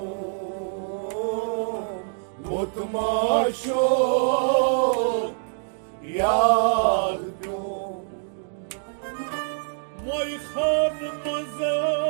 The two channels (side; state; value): left; silent; digital silence